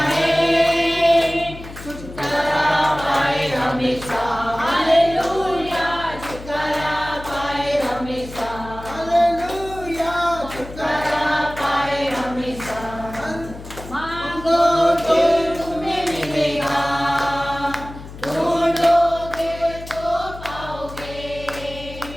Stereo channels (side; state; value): left; noise; hum, 14 dB below the sound